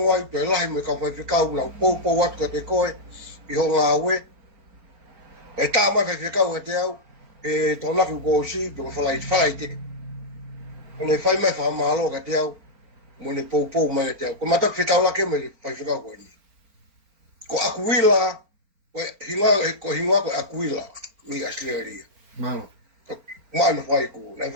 pe lai me ka fai kau na po wat ka te koe i ho nga we e ta ma fai kau te au e to na ko si do fai te ne fai mai fa malo ka te au mo ne po mai te au ko mata fitau la ke me fai kau ko ni ko akuila ko hinga ko akuila mi asleria Malo. mana fai ku na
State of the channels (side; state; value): left; late; 4.4 ms